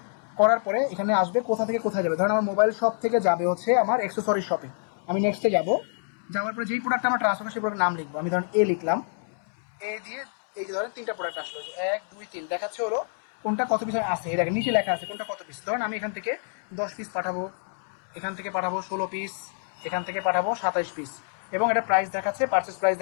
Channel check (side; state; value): right; silent; digital silence